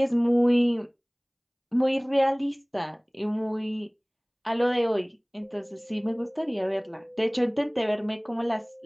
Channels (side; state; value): both; identical; correlation 1.00